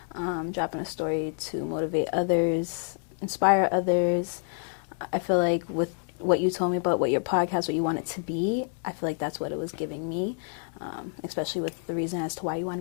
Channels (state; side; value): silent; right; 58 dB below the other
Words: to motivate others, inspire others. I feel like with what you told me about what your podcast, what you want it to be, I feel like that's what it was giving me, especially with the reason as to why you